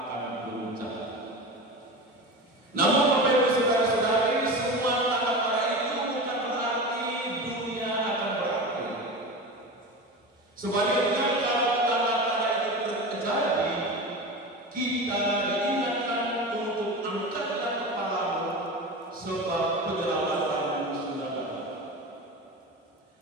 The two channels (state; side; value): normal; both; correlation 0.27